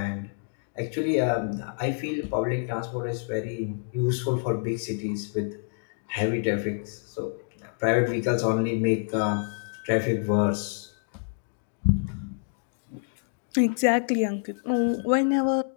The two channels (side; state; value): right; silent; digital silence